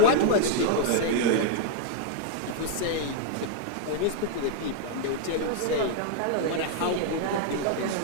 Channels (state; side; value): different; both; correlation 0.00